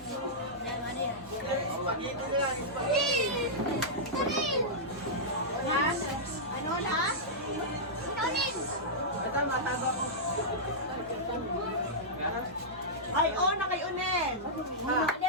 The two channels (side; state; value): both; normal; correlation -0.11